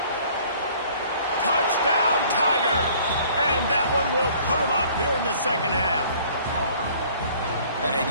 Touchdown, Tigers! And that one will put them up here in the second half. And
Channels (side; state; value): both; inverted; correlation -0.55